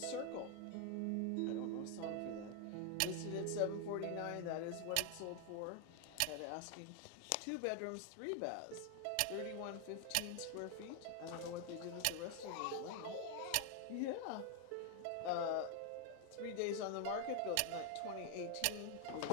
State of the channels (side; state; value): both; different; correlation 0.00